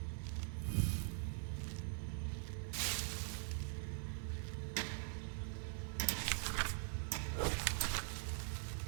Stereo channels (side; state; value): left; silent; digital silence